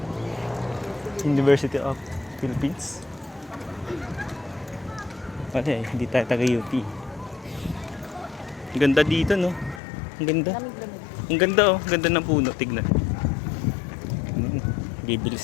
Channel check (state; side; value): drops out; right; at 9.8 s